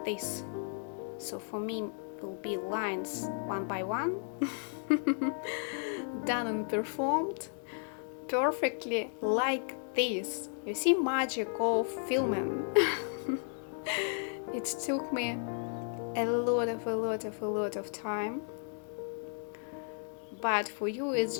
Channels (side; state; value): right; silent; 55 dB below the other